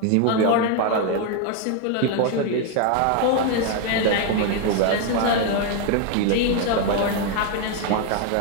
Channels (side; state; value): both; different; correlation 0.01